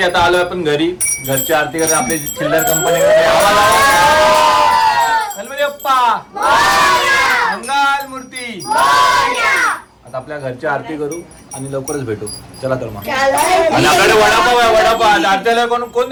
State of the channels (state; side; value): identical; both; correlation 1.00